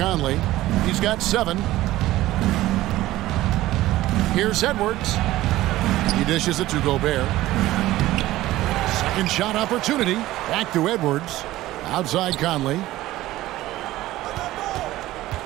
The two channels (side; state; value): left; quieter; 16.1 dB